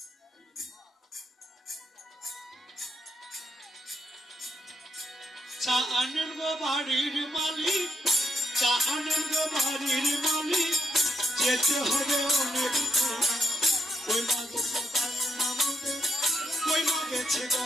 চা আনেন গো বাড়ির মালিক, চা আনেন গো বাড়ির মালিক, যেতে হবে অনেক। ওই মা গেছে বাজনামদের, ওই মা গেছে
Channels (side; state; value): both; normal; correlation 0.76